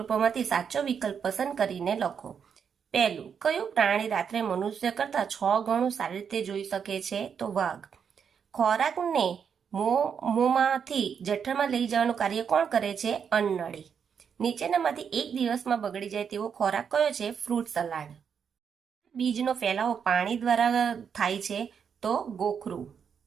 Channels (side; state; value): left; quieter; 7.1 dB